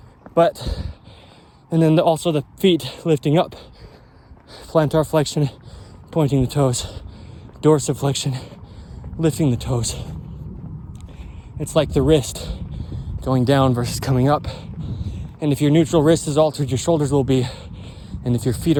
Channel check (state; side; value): identical; both; correlation 1.00